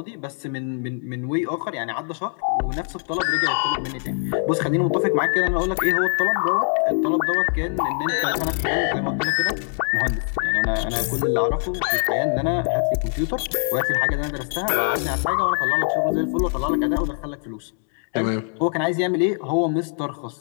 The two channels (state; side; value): silent; right; 56 dB below the other